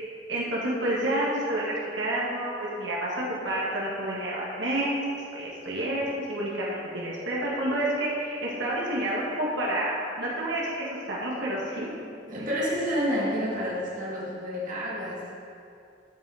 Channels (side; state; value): both; normal; correlation 0.27